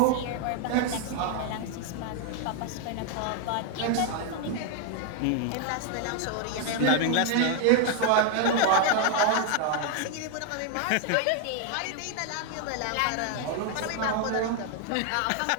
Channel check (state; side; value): different; both; correlation 0.00